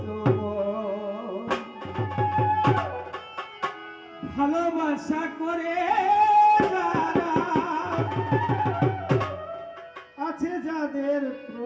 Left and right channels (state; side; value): identical; both; correlation 1.00